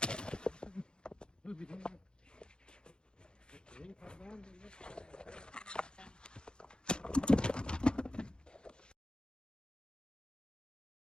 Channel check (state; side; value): late; right; 0.049 ms